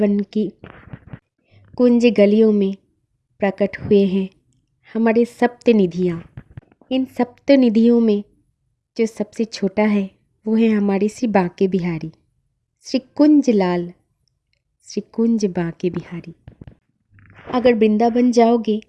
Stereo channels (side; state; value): both; identical; correlation 1.00